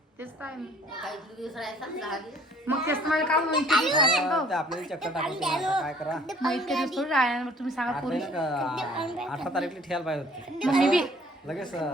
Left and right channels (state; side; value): normal; both; correlation 0.56